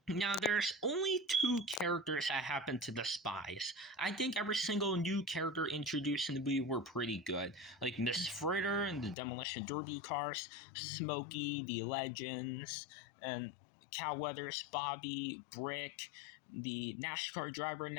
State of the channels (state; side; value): drops out; right; at 9.2 s